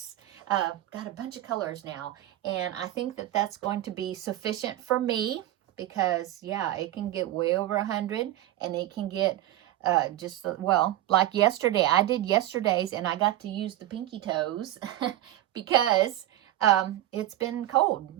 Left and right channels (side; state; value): left; quieter; 14.1 dB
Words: Got a bunch of colors now, and I think that that's going to be sufficient for me because, yeah, it can get way over 100, and it can get just, well, like yesterday. I did yesterday's, and I got to use the Pinky Toes because it's been cold.